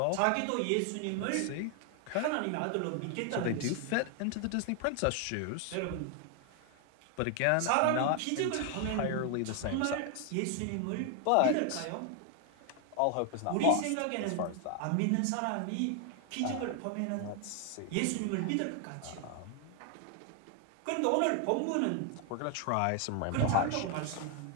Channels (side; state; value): both; different; correlation 0.00